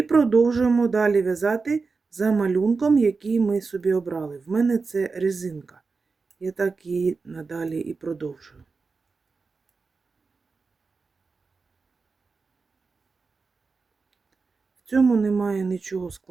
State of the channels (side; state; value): left; quieter; 4.4 dB